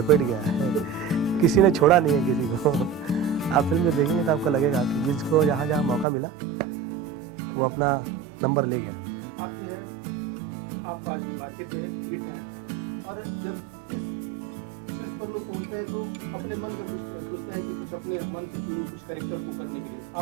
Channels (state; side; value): drops out; left; at 6.1 s